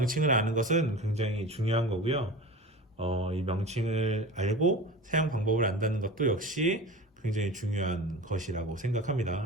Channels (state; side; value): normal; both; correlation 0.33